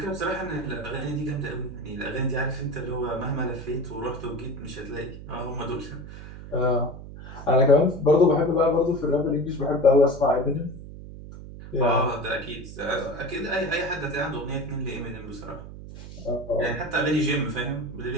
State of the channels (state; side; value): noise; right; hum, 13 dB below the sound